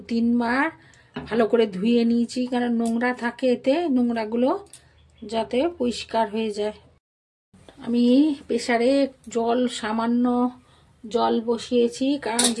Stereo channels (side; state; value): both; identical; correlation 1.00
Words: বার ভালো করে ধুয়ে নিয়েছি, কারণ নোংরা থাকে এতে, নোংরাগুলো যাতে পরিষ্কার হয়ে যায়। আমি প্রেসারে সামান্য জল বসিয়েছি, কারণ